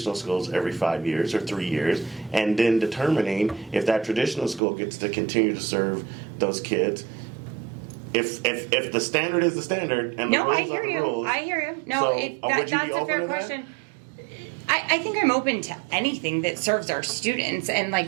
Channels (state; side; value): drops out; left; at 4.6 s